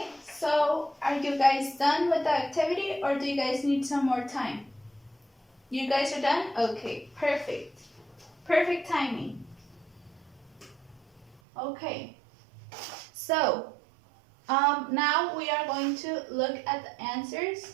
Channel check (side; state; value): left; drops out; at 11.4 s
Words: so are you guys done with the activity or do you guys need some more time? You guys are done? Okay, perfect. Perfect timing. Okay, so now we are going to look at the answers.